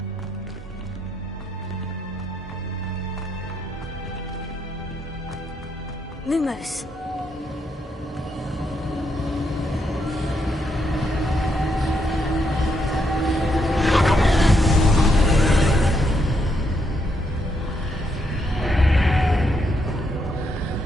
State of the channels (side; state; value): both; normal; correlation 0.78